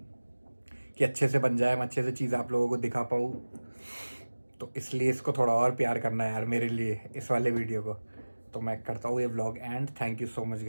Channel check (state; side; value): inverted; both; correlation -1.00